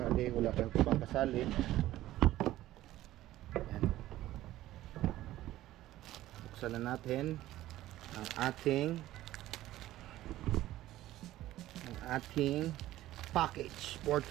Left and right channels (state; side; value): quieter; left; 14.9 dB